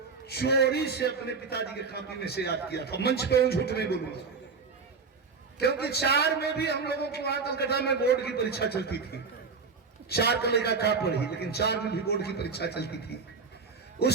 चोरी से अपने पिताजी के कॉपी में से याद किया था। मंच पे झूठ नहीं बोलूंगा, क्योंकि 4 में भी हम लोगों को वहां कलकत्ता में बोर्ड की परीक्षा चलती थी। 4 का लेगा का पढ़ी, लेकिन 4 में भी बोर्ड की परीक्षा चलती थी।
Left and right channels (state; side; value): quieter; left; 4.9 dB